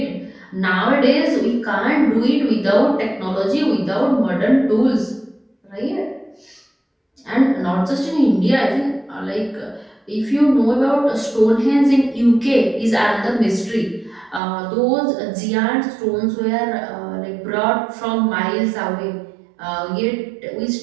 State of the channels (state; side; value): drops out; left; at 14.4 s